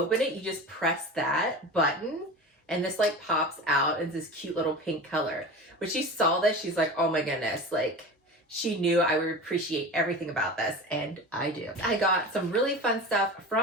it, you just press that button. And this like pops out in this cute little pink color. When she saw this, she's like, oh my goodness, like she knew I would appreciate everything about this, and I do. I got some really fun stuff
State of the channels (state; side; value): normal; both; correlation 0.31